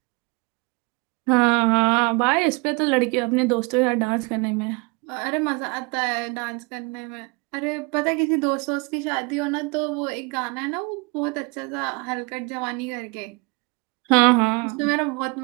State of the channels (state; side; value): quieter; left; 29.2 dB